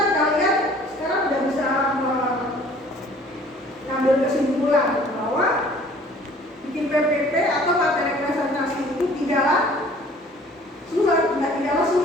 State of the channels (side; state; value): both; normal; correlation 0.52